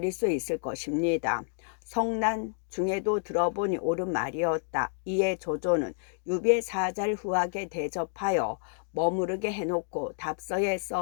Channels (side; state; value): right; silent; 58 dB below the other